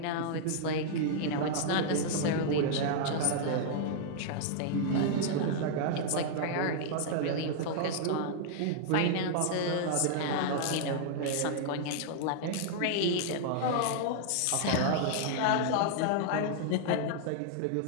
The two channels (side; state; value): both; different; correlation -0.01